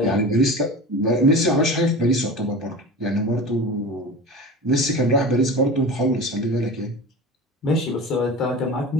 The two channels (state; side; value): normal; both; correlation 0.32